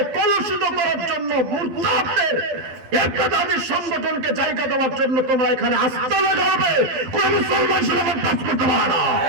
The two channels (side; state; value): left; late; 12 ms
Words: কলুষিত করার জন্য মুরতাদদের ইরতিদাদি সংগঠনকে জায়গা দেওয়ার জন্য তোমরা এখানে আস্থা লাগাবে, কোন মুসলমান সেরকম কাজ করতে পারে না।